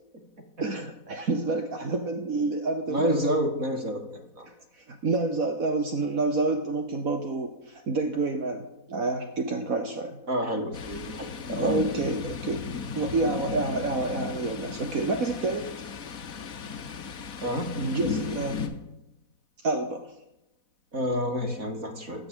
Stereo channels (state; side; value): late; left; 4.1 ms